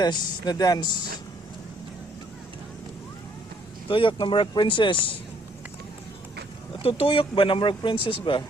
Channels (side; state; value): both; normal; correlation 0.65